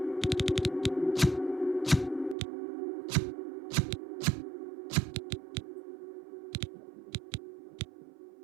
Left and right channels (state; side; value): drops out; left; at 2.4 s